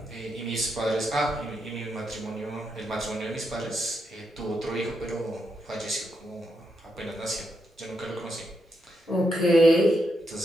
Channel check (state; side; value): normal; both; correlation 0.82